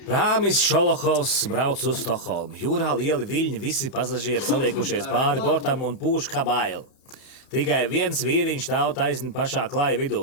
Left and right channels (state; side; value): late; right; 30 ms